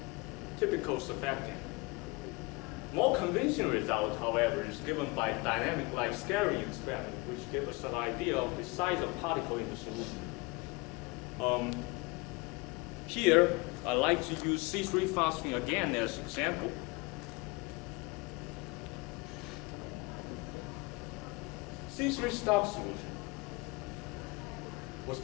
typical surfactant. More convincing result, however, is given by dynamic light scattering experiment, which gives us an idea of the size of particle in the solution. Here, I like to use C3 phosphine again as an example. C3 stock solution was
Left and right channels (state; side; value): quieter; right; 25.9 dB